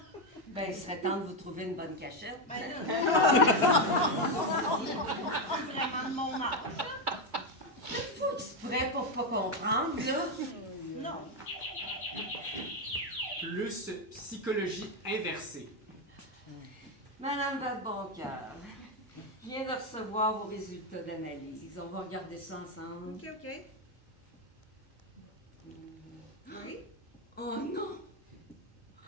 Ben, il serait temps de vous trouver une bonne cachette. C'est vraiment de mon âge. Faut exprès pour pas comprendre, là. Non. Plus psychologie inversée. Madame votre bon cœur, je viens de recevoir vos résultats d'analyse. On va regarder ça ensemble. Ok. Oui? Oh non!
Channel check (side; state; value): both; normal; correlation 0.07